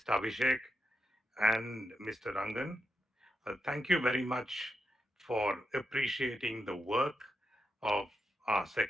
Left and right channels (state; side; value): normal; both; correlation 0.84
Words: Abhishek, and Mr. Rangan, thank you very much for appreciating the work of our